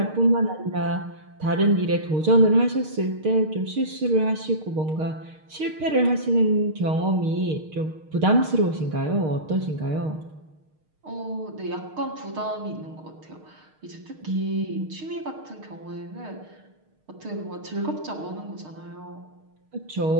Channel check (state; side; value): late; left; 6.5 ms